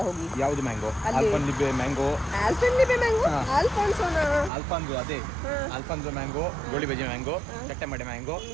ಹೋಗಿ. ಯಾವುದು ಮ್ಯಾಂಗೋ? ಆಲ್ಫಾನ್ಲಿಬೆ ಮ್ಯಾಂಗೋ. ಆಲ್ಫಾನ್ಸೋ ಅದೇ Alfonso mango, goli baje mango, ಚಟ್ಟೆ ಮಡೆ mango,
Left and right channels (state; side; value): drops out; left; at 4.5 s